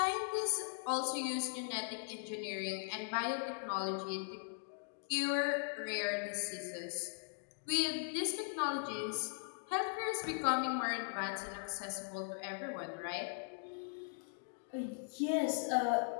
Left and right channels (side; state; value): right; silent; digital silence